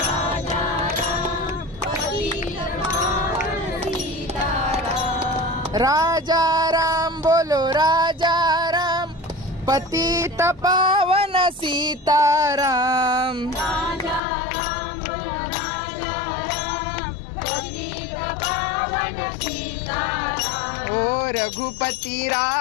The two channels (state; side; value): drops out; right; at 14.2 s